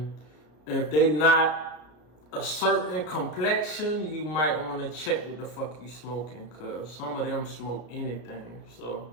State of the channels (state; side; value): late; right; 33 ms